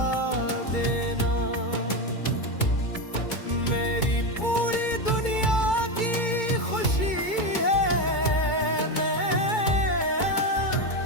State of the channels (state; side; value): late; right; 2.2 ms